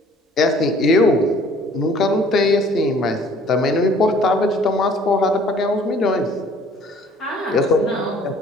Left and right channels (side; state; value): both; normal; correlation 0.55